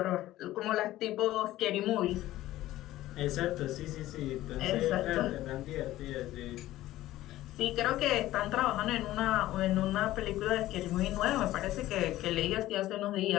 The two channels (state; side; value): quieter; right; 15.3 dB